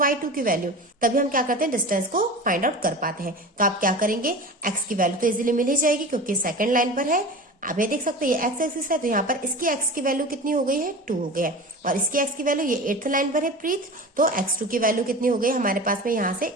y2 की वैल्यू। तभी हम क्या करते हैं, डिस्टेंस को फाइंड आउट कर पाते हैं। तो आप क्या करेंगे, x की वैल्यू तो इजीली मिल ही जाएगी क्योंकि सेकंड लाइन पर है। आप ये देख सकते हैं ये x एक्सिस है, तो यहाँ पर इसकी x की वैल्यू कितनी हो गई है, 2 हो गया है, और इसकी x की वैल्यू ये 8th लाइन पर है प्रीत, तो x2 की वैल्यू कितनी हो गई हमारे पास में, यहाँ से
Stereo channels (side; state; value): both; normal; correlation 0.33